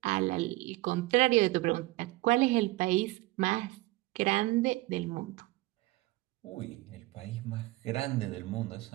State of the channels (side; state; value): left; quieter; 19.8 dB